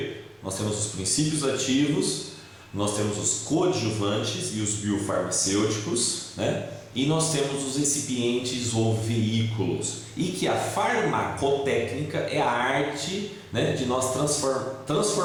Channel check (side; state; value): both; identical; correlation 1.00